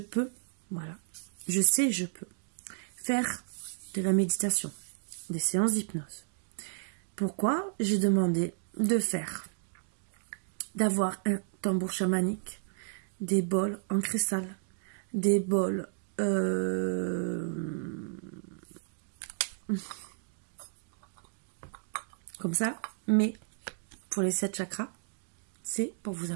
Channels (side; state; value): left; silent; digital silence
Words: voilà, je sais, je peux faire de la méditation, des séances d'hypnose. Pourquoi j'ai demandé d'avoir un tambour chamanique, des bols en cristal, des bols comme ça, mais pour les 7 chakras, c'est pour vous